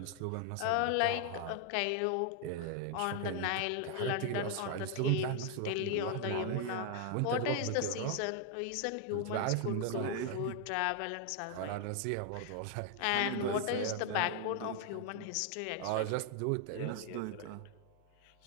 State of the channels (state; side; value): different; both; correlation 0.00